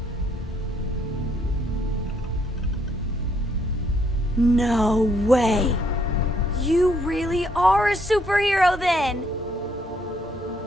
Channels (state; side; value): normal; both; correlation 0.69